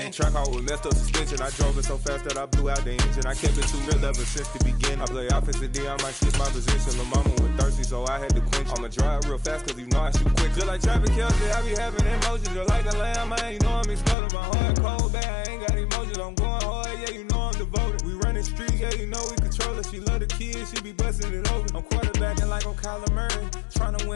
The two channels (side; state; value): right; drops out; at 14.2 s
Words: and track out with messed up suspension. I drove it so fast that I blew out the engine. I kept it too real ever since the beginning. I play offensive D, I might switch my position. Lil' mama was thirsty, so I had to quench. I'ma drive real fast, cause you know I shoot quick. Just like traffic Kelsey, I be having emotions. Just like a lamb, man, you know I'm exploding. My heart cold, bad, I ain't got emotions. I'm going hard, yeah, you know I'm devoted. We running streets, yeah, you know we control it. She love the kids, she be busting it over. I'm quarterbacking like I'm Kyler Murray. Tryna win